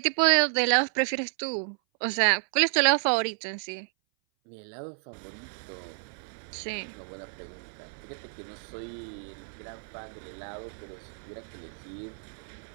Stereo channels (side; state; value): left; silent; 58 dB below the other